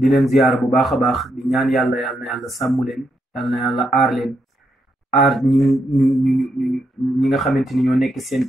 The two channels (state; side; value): normal; both; correlation 0.80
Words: leen ziyaara bu baax a baax di ñaan yàlla na yàlla sàmm leen yàlla na yàlla aar leen aar ñi nga xamante ni ñoo nekk seen